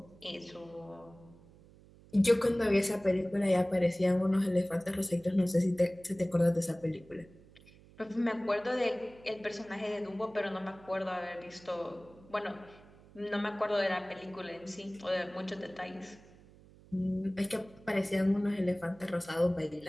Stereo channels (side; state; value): right; noise; hum, 24 dB below the sound